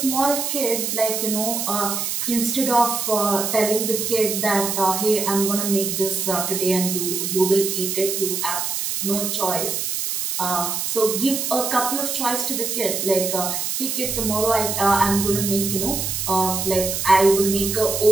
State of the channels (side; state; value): right; noise; hiss, 2 dB below the sound